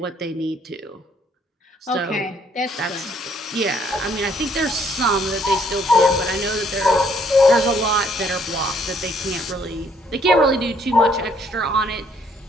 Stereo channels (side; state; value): both; normal; correlation 0.66